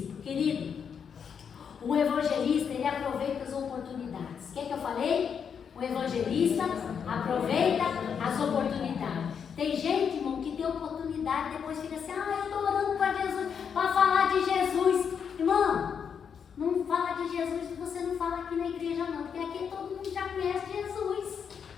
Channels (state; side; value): quieter; right; 7.1 dB